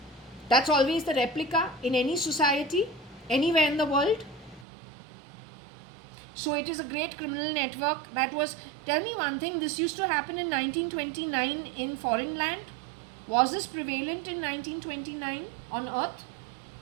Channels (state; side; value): drops out; left; at 4.7 s